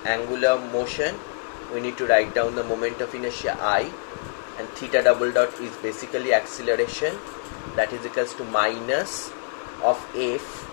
angular motion, we need to write down the moment of inertia I, and theta double dot is basically acceleration, that is equals to minus of F.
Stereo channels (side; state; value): right; silent; 62 dB below the other